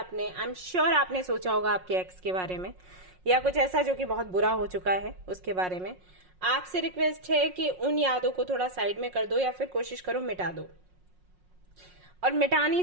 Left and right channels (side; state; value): left; late; 5.5 ms